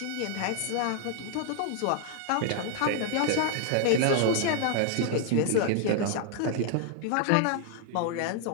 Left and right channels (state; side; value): different; both; correlation 0.00